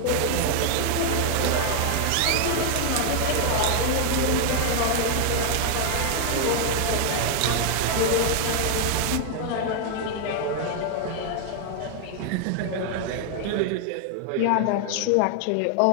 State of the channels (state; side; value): different; both; correlation 0.00